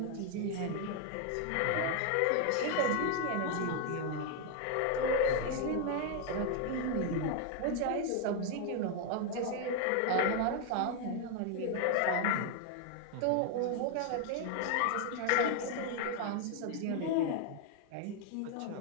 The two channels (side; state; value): both; different; correlation 0.01